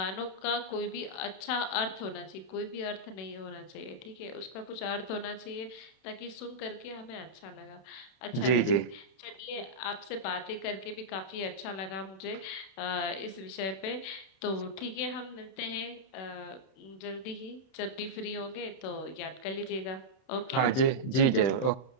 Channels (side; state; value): right; late; 31 ms